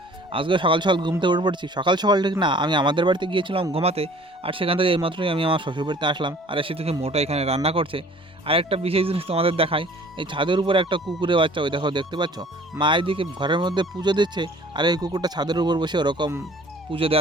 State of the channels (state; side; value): normal; both; correlation 0.51